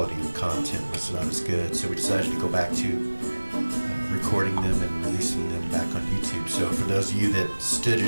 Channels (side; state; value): both; inverted; correlation -1.00